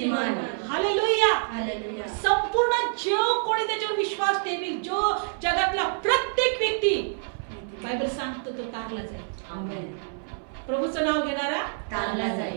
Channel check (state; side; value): silent; left; 60 dB below the other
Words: हालेलुया. हालेलुया. संपूर्ण जो कोणी त्याच्यावर विश्वास ठेवील, जो जगातला प्रत्येक व्यक्ती बायबल सांगतो तो तारला जाईल. आमेन. प्रभूचं नाव घेणारा तारला